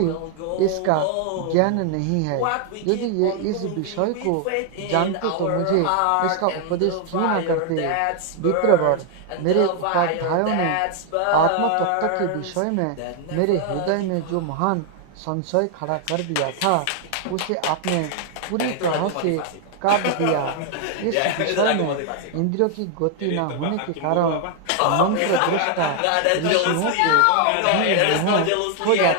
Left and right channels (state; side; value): different; both; correlation 0.00